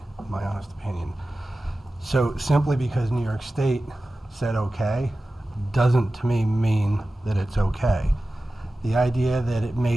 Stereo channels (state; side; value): normal; both; correlation 0.95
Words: in my honest opinion. So simply because New York State said okay, doesn't to me mean that it's okay. The idea that it